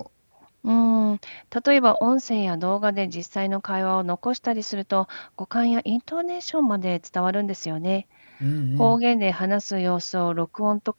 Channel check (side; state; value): both; inverted; correlation -1.00